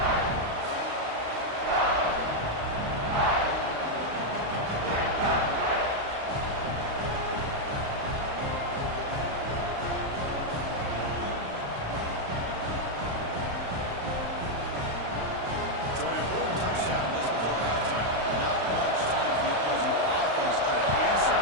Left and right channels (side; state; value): left; late; 35 ms